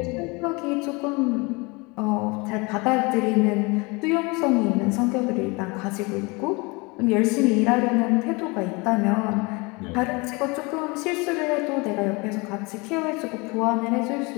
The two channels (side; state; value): right; quieter; 27.2 dB